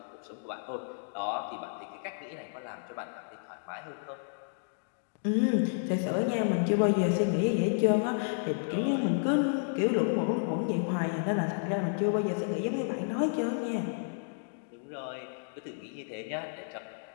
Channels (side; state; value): right; silent; digital silence